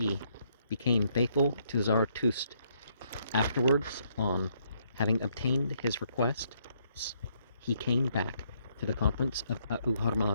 became faithful to Zarathustra. Afterwards, on having obtained his request, he came back to the conference of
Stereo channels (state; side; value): inverted; both; correlation -0.71